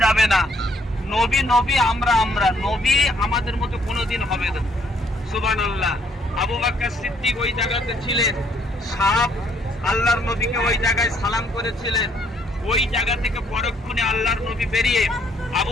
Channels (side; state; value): both; normal; correlation 0.67